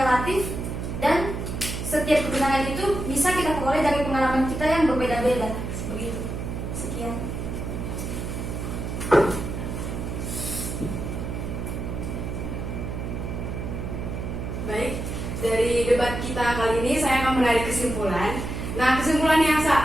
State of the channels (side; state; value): right; noise; hum, 5 dB below the sound